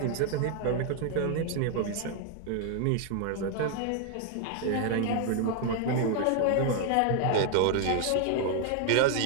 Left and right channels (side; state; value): both; different; correlation 0.00